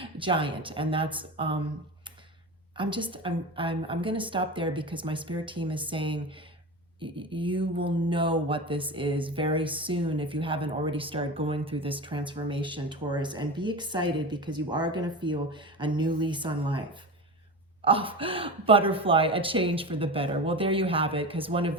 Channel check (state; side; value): normal; both; correlation 0.26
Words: giant. And that's I'm going to stop there because my spirit team is saying you will know what this is very soon if you haven't already started going through this transformation, Taurus, and be excited because you are going to feel a new lease on life. Oh, butterfly, a change for the better. Well, there you have it, because one of